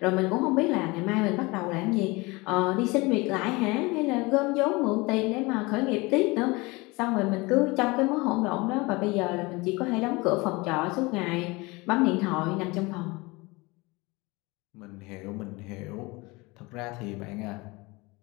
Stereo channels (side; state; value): right; quieter; 24.2 dB